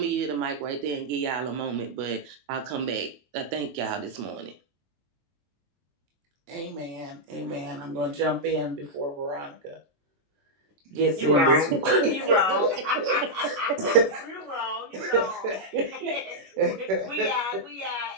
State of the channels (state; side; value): late; left; 21 ms